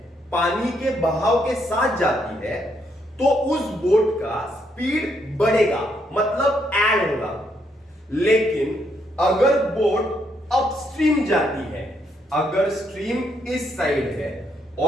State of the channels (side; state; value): both; normal; correlation 0.75